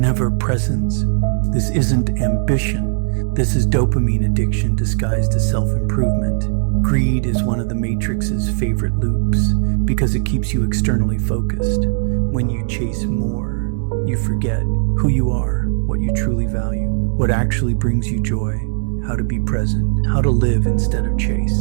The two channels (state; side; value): silent; left; digital silence